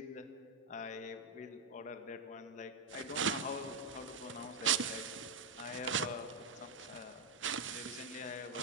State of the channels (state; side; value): quieter; left; 3.7 dB